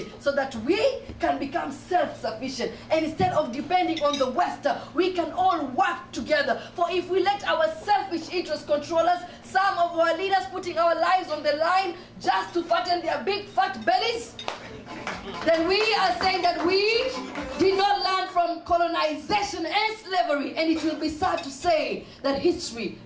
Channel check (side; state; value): both; identical; correlation 1.00